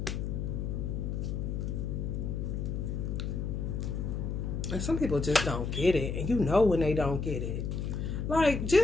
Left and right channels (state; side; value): noise; left; hum, 2 dB below the sound